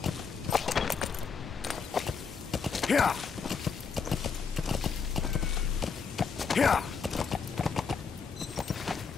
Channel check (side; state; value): right; quieter; 5.7 dB